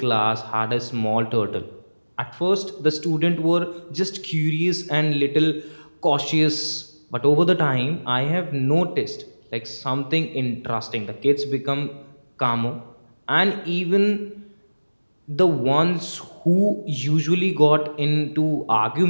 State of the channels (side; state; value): both; inverted; correlation -1.00